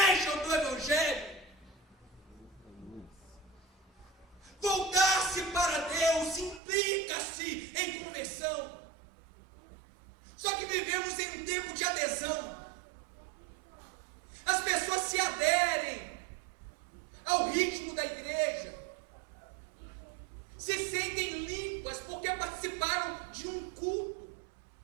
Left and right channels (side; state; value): left; drops out; at 6.6 s